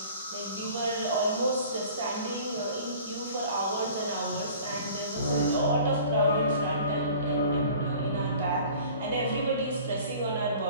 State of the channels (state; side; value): inverted; both; correlation -0.46